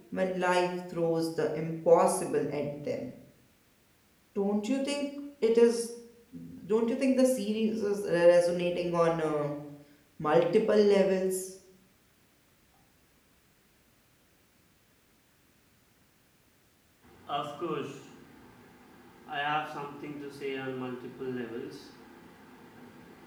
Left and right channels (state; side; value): identical; both; correlation 1.00